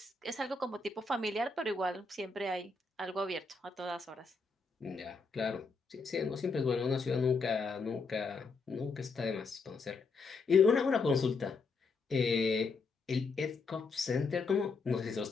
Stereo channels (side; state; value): right; quieter; 4.2 dB